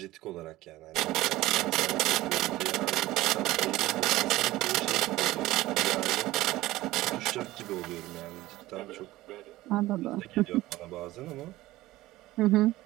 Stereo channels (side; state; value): left; quieter; 17.2 dB